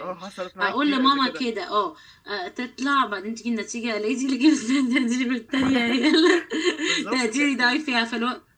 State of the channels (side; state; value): both; identical; correlation 1.00